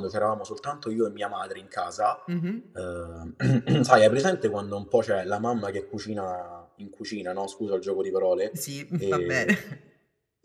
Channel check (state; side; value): identical; both; correlation 1.00